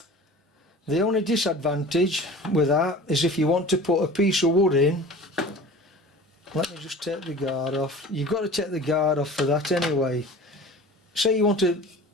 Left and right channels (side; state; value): both; normal; correlation 0.40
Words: only disadvantage with that is if you want to put a piece of wood in. Let me just take the guard off. You've got to take the guard off for that anyway. Say you want a